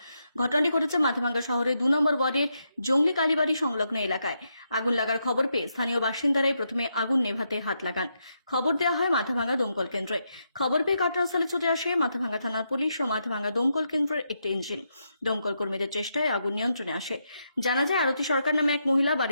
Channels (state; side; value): inverted; both; correlation -0.81